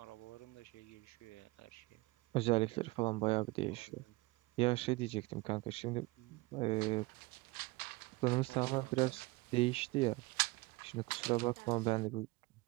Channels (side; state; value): left; quieter; 22.6 dB